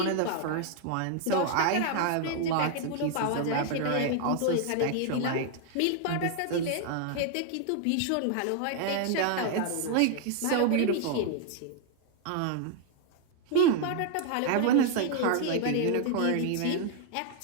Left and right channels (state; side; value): different; both; correlation 0.00